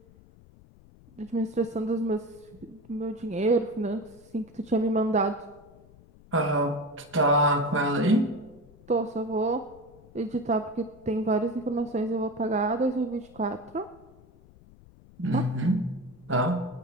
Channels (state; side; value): noise; left; rumble, 24 dB below the sound